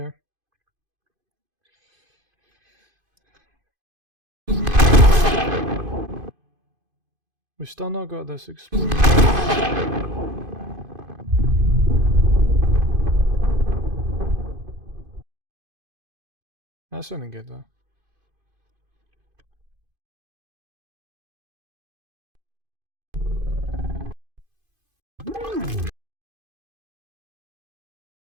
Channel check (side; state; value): left; late; 2.5 ms